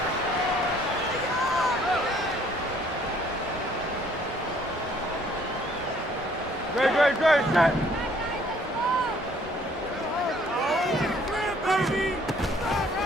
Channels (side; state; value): both; normal; correlation 0.61